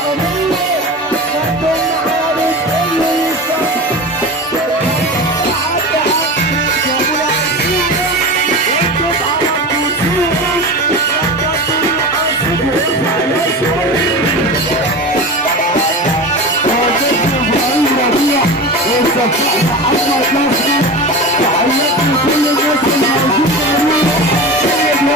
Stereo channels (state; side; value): normal; both; correlation 0.29